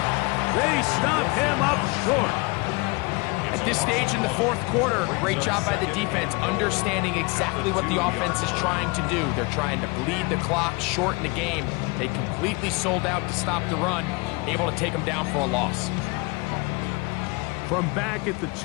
They stop him up short. At this stage in the fourth quarter, great job by the defense, understanding exactly what the offense is trying to do. They're trying to bleed the clock, shorten the game. They completely sold out to stop the run, able to take them down for a loss. From back at the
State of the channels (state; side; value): quieter; right; 27.2 dB